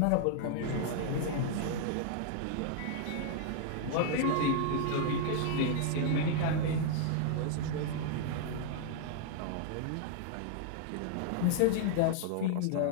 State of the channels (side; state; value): both; different; correlation -0.01